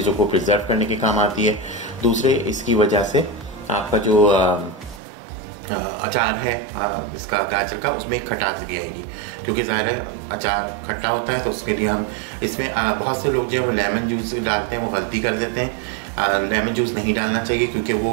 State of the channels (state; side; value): drops out; left; at 5.0 s